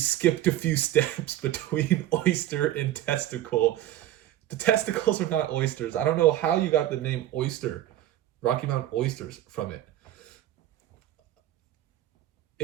a few steps between oyster and testicle. The testicles are not oysters. I don't know how you got the name oyster, Rocky Mountain oysters from it.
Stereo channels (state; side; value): quieter; left; 13.2 dB